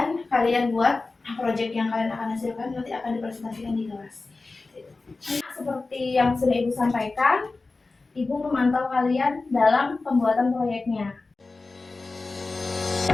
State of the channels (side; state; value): right; quieter; 3.6 dB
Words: kalian buat proyek yang kalian akan hasilkan, nanti akan dipresentasikan di kelas. Seperti yang sudah Ibu sampaikan, Ibu memantau kalian dalam pembuatan proyeknya.